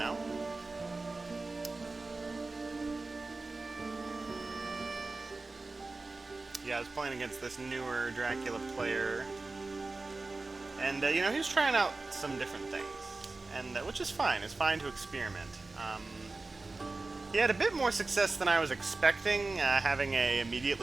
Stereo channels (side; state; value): left; quieter; 3.5 dB